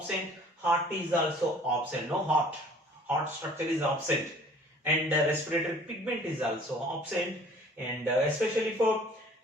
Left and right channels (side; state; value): both; normal; correlation 0.51